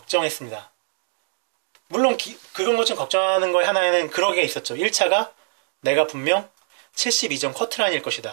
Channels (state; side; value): silent; left; digital silence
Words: 물론 그런 것 좀 걱정하는 거에 하나에는 그런 게 있었죠. 1차가 내가 분명 72점 커트라인일